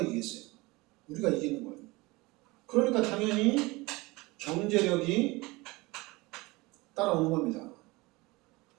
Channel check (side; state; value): left; quieter; 22.8 dB